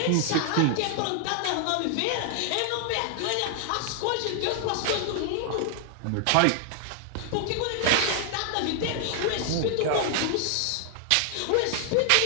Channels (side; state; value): both; different; correlation 0.00